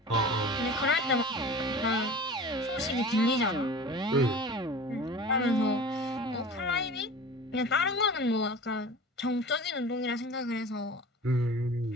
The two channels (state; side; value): normal; both; correlation 0.38